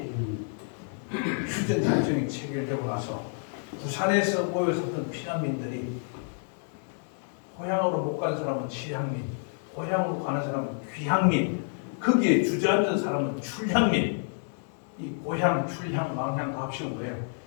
휴전작전이 체결되고 나서 부산에서 모여섰던 피난민들이 고향으로 못 간 사람은 취향민, 고향으로 가는 사람은 귀향민, 거기에 주저앉은 사람은 출향민. 이 고향, 출향, 망향 다 합치면 뭐예요?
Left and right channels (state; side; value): silent; right; 59 dB below the other